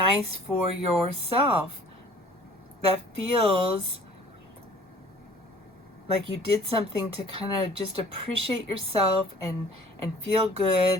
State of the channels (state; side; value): normal; both; correlation 0.51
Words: for yourself that feels like you did something to kind of just appreciate yourself and feel good